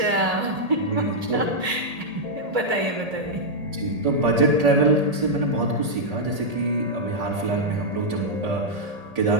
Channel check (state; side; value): late; left; 1.8 ms